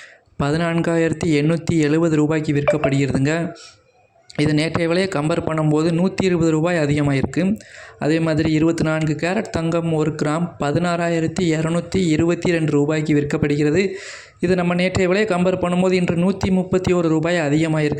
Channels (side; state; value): both; identical; correlation 1.00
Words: 14,870 ரூபாய்க்கு விற்கப்படுகிறதுங்க. இது நேற்றைய விலையை கம்பேர் பண்ணும்போது 120 ரூபாய் அதிகமாக இருக்குது. அதே மாதிரி 24 கேரட் தங்கம் 1 கிராம் 16,222 ரூபாய்க்கு விற்கப்படுகிறது. இது நம்ம நேற்றைய விலையை கம்பேர் பண்ணும்போது இன்று 131 ரூபாய் அதிகமாக